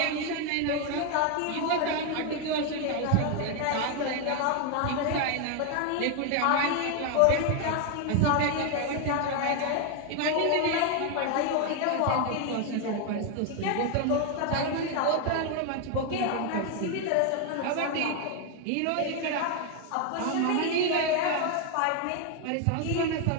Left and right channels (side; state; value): both; different; correlation 0.01